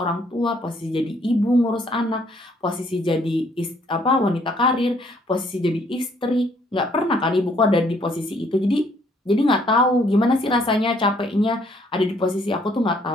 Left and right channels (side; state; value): both; normal; correlation 0.65